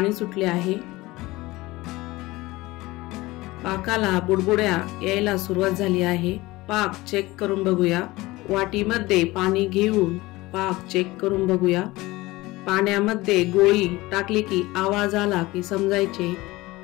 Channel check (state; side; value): quieter; right; 20.0 dB